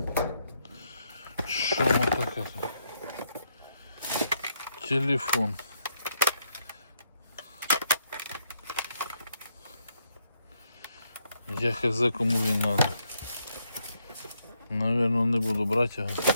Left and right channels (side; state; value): both; inverted; correlation -0.76